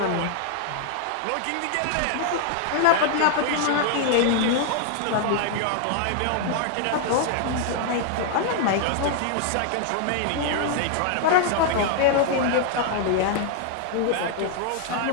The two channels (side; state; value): both; different; correlation 0.00